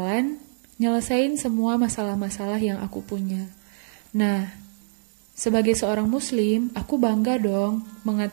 nyelesain semua masalah-masalah yang aku punya. Nah, sebagai seorang muslim, aku bangga dong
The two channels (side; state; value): left; silent; digital silence